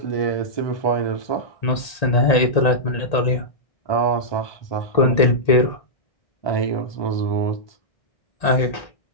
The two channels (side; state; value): right; late; 1.8 ms